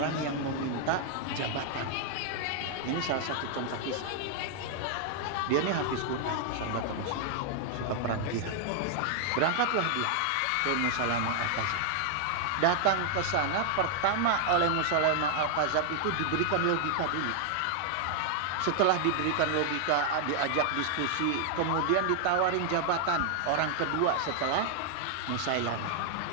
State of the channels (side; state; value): both; different; correlation 0.00